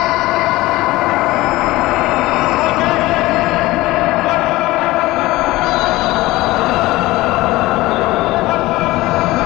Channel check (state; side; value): quieter; right; 18.9 dB